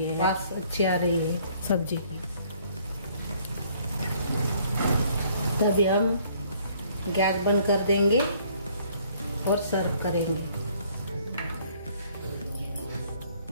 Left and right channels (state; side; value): inverted; both; correlation -0.61